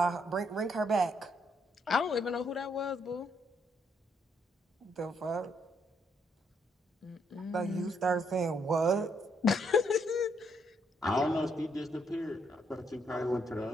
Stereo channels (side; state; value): both; normal; correlation 0.74